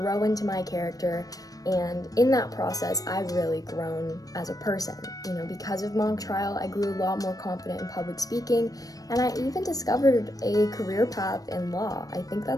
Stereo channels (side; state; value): right; late; 0.18 ms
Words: into my character, and in that process, I've really grown as a person. Because of mock trial, I grew a lot more confident in public speaking, and I even discovered a career path in law. I think